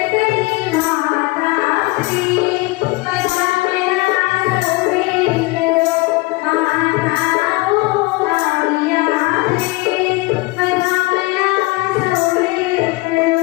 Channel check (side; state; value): right; quieter; 23.0 dB